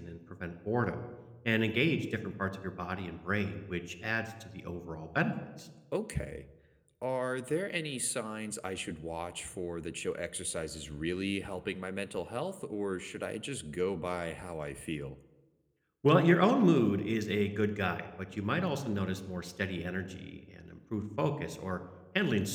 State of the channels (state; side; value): identical; both; correlation 1.00